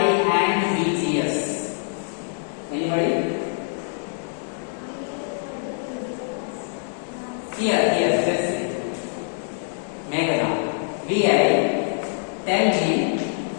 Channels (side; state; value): right; silent; digital silence